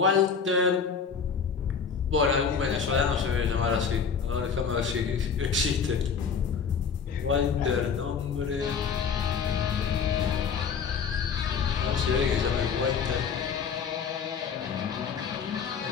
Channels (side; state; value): right; quieter; 6.3 dB